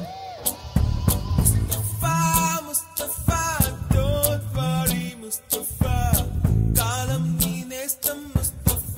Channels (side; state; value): both; identical; correlation 1.00